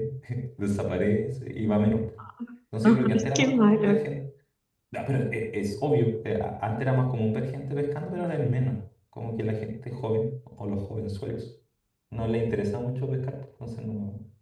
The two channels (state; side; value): identical; both; correlation 1.00